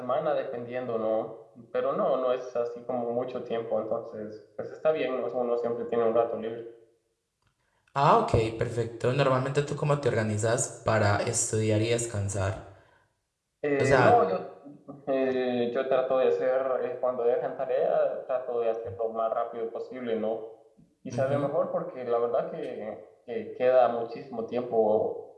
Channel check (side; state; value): both; identical; correlation 1.00